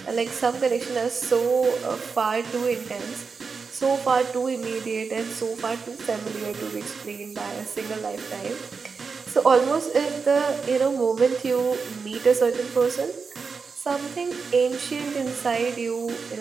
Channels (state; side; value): quieter; left; 5.1 dB